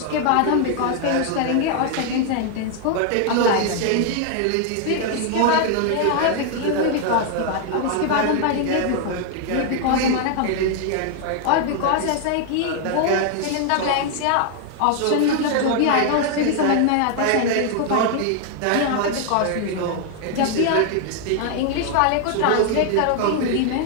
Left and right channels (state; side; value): different; both; correlation 0.00